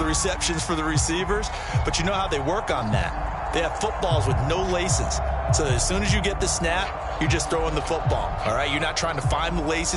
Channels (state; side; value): identical; both; correlation 1.00